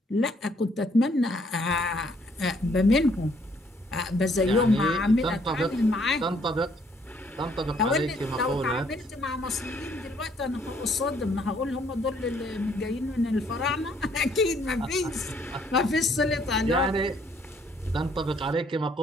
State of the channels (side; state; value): both; normal; correlation 0.66